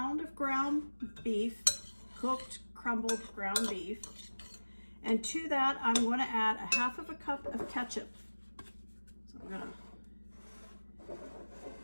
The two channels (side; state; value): both; inverted; correlation -1.00